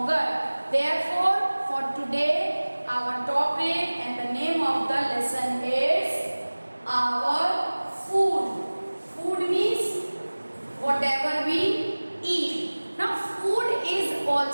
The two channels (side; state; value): both; inverted; correlation -1.00